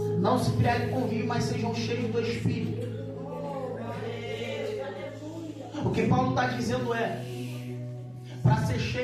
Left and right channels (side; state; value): both; identical; correlation 1.00